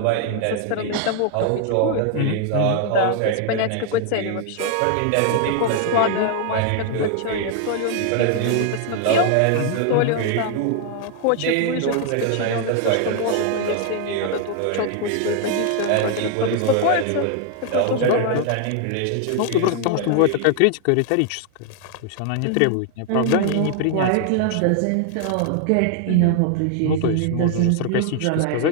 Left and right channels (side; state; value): both; different; correlation 0.00